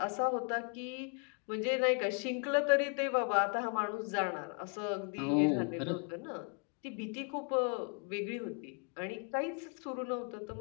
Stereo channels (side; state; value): right; quieter; 38.8 dB